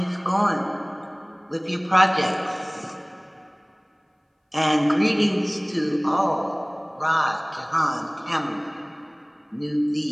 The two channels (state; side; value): identical; both; correlation 1.00